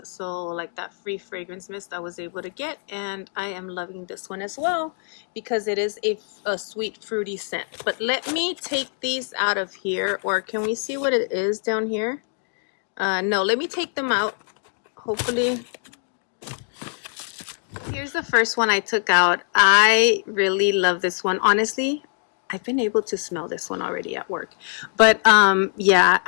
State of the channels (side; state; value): right; silent; 60 dB below the other